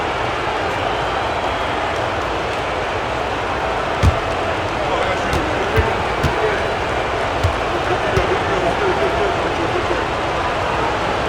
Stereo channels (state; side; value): identical; both; correlation 1.00